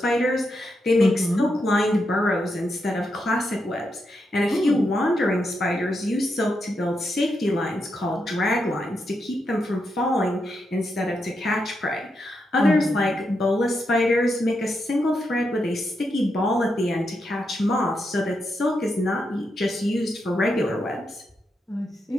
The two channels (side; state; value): both; normal; correlation 0.83